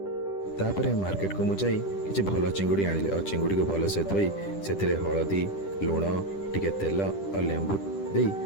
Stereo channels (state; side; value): late; right; 10 ms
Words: तापर मार्केट को मुझे किसी भल चिंगुड़ी आनिले और चिंगुड़ी को भल से धोई से हलदी लुण टिके तेल और लेंबू देई